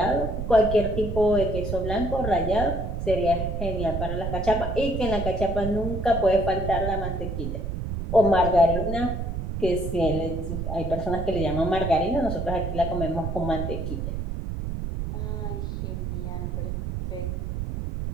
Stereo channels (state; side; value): noise; right; rumble, 4 dB below the sound